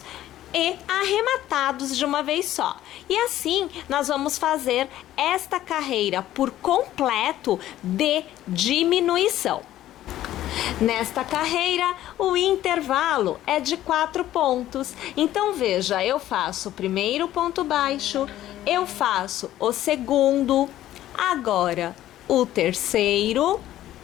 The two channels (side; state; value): right; quieter; 13.4 dB